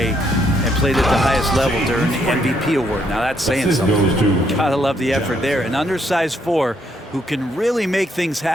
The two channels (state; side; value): normal; both; correlation 0.73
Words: and played at the highest level during the MVP award. Now that's saying something. Gotta love the effort there. An undersized 4 who can really make things